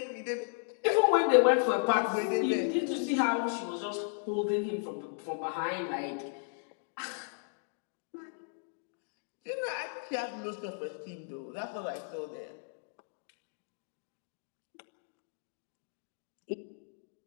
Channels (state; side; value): silent; right; digital silence